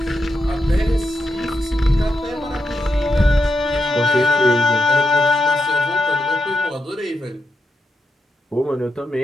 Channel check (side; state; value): both; normal; correlation 0.84